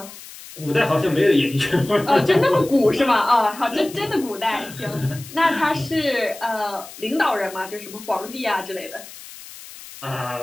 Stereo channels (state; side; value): noise; left; hiss, 16 dB below the sound